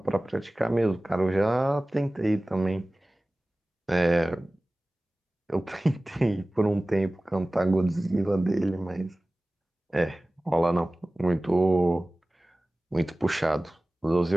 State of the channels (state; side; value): normal; both; correlation 0.98